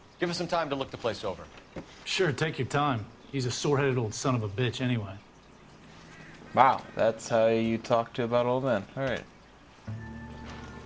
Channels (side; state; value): both; identical; correlation 1.00